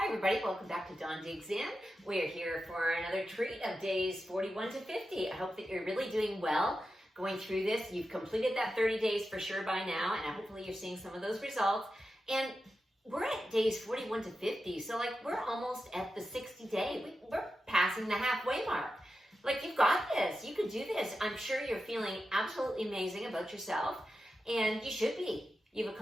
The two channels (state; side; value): normal; both; correlation 0.90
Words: everybody, welcome back to Dawn Digs In. We're here for another treat of days 41 to 50. I hope that you're really doing well going through this. You've completed that 30 days for sure by now, and hopefully you're seeing some of those results. And we're at days 41 to 50, so we're almost at the 60 day. We're passing the halfway mark. You've got this, you can do this. I'm sure you're feeling absolutely amazing about yourself, and you should be. You've